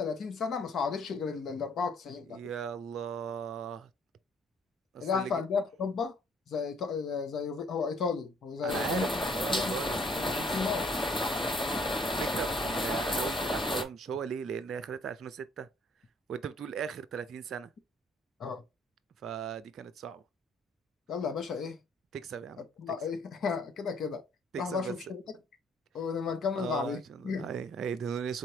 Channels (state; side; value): normal; both; correlation 0.61